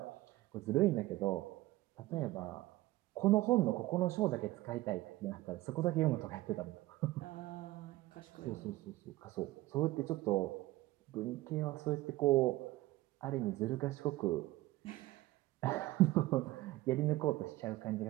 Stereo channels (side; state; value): left; quieter; 17.8 dB